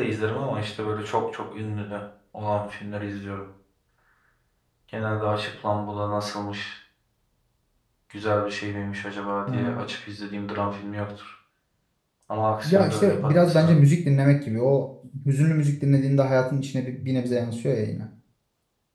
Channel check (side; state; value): both; identical; correlation 1.00